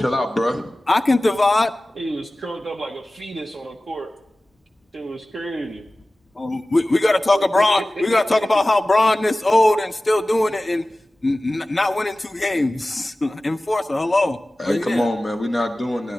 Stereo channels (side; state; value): both; normal; correlation 0.97